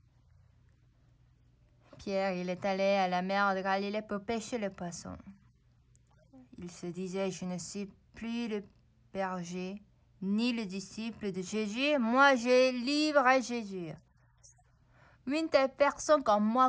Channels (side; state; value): both; identical; correlation 1.00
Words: Pierre, il est allé à la mer de Galilée pour pêcher le poisson. Il se disait, je ne suis plus le berger, ni le disciple de Jésus. Moi, je livre à Jésus. Une telle personne comme